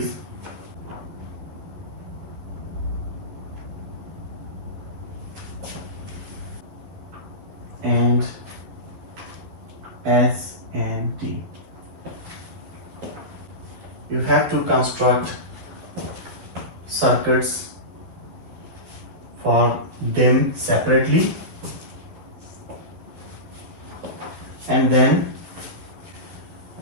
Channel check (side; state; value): left; late; 12 ms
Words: and S and T. You have to construct circuits for them separately, and then